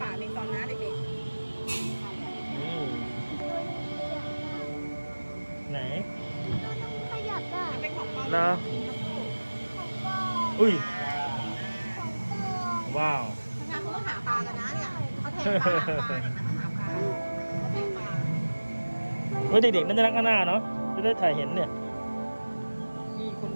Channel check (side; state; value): both; inverted; correlation -1.00